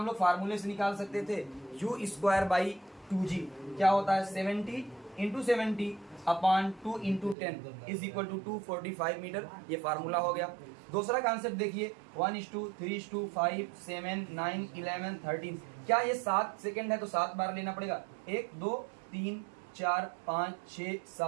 लोग फार्मूले से निकाल सकते थे? u²/2g क्या होता है? 70 × 70 upon 2 × 10 is equal to 245 metre. ये फार्मूला हो गया। दूसरा कॉन्सेप्ट देखिए, 1:3:5 7 9 11 13। क्या ये 7 सेकेंड है तो 7 बार लेना पड़ेगा? 1 2 3 4 5 6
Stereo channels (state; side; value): drops out; left; at 7.4 s